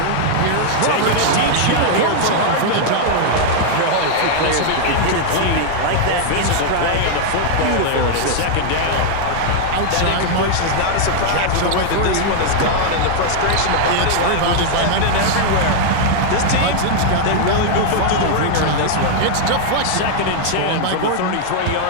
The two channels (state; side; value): different; both; correlation 0.00